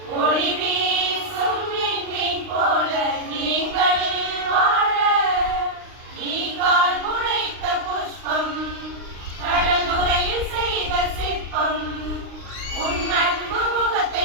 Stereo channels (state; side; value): late; left; 39 ms